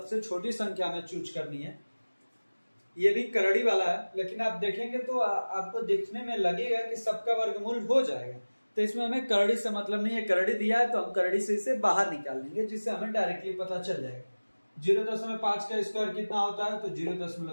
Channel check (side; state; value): both; inverted; correlation -1.00